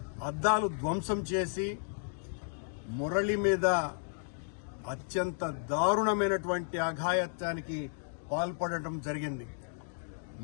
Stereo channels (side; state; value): right; silent; digital silence